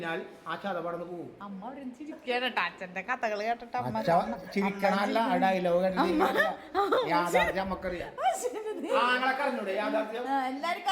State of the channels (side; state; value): both; identical; correlation 1.00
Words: ആ ചതവടന്ന് പോകും. അമ്മ അവിടെ ചിരിക്കാനട്ടാ അച്ഛന്റെ കഥകൾ കേട്ടിട്ട്. ചിരിക്കണല്ല ഡയലോഗ് യാഥാർത്ഥ്യം നമുക്കറിയാം. ആങ്ങളൊക്കെ അറിഞ്ഞൂടെ യാഥാർത്ഥ്യം? എല്ലാവർക്കും